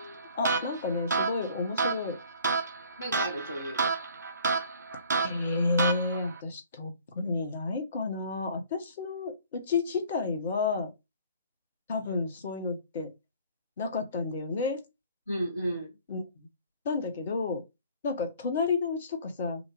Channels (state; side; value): inverted; both; correlation -0.53